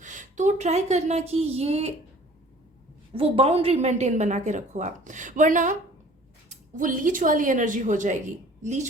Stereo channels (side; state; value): both; normal; correlation 0.50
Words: तो ट्राई करना कि ये वो बाउंड्री मेंटेन बना के रखो आप, वरना वो लीच वाली एनर्जी हो जाएगी।